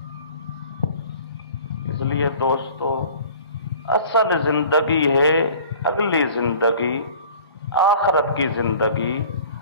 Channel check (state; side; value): inverted; both; correlation -0.47